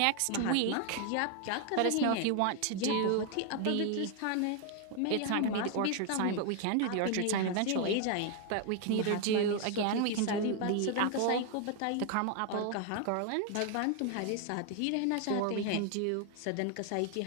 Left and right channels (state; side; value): different; both; correlation 0.01